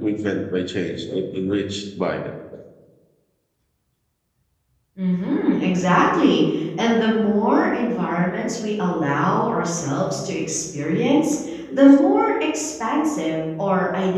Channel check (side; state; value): both; identical; correlation 1.00